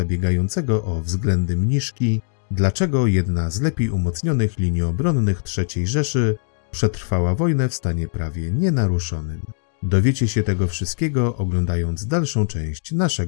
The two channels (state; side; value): silent; right; digital silence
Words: o względy mniszki, dlaczego jedna z lepiej umocnionych linii obronnych III Rzeszy przetrwała wojnę w stanie prawie nienaruszonym. Dowiecie się tego wszystkiego, oglądając dalszą część